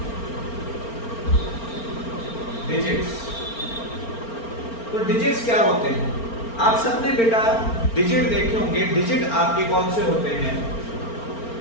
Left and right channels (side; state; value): right; late; 4.4 ms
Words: डिजिट्स, तो डिजिट्स क्या होते हैं? आप सबने बेटा डिजिट देखे होंगे. डिजिट आपके कौन से होते हैं?